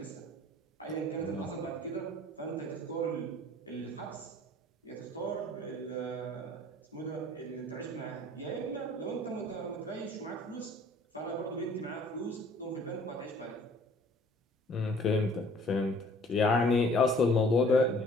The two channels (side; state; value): both; normal; correlation 0.54